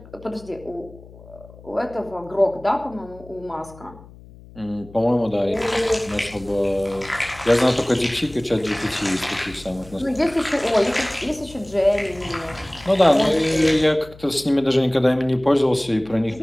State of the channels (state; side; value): noise; left; hum, 21 dB below the sound